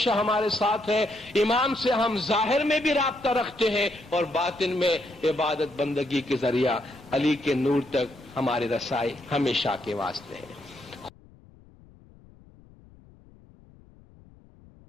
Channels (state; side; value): noise; left; rumble, 25 dB below the sound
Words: ہمارے ساتھ ہے. امام سے ہم ظاہر میں بھی رابطہ رکھتے ہیں اور باطن میں عبادت بندگی کے ذریعہ علی کے نور تک ہماری رسائی ہمیشہ کے واسطے ہے.